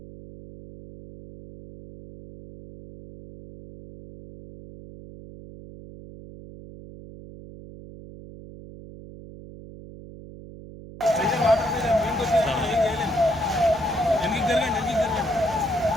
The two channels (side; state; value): right; noise; hum, 16 dB below the sound